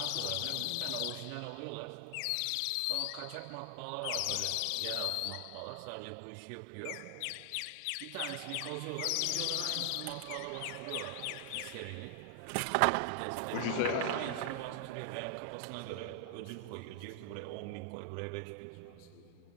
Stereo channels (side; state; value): both; different; correlation 0.00